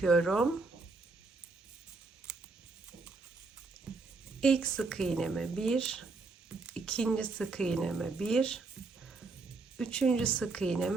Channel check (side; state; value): left; quieter; 3.9 dB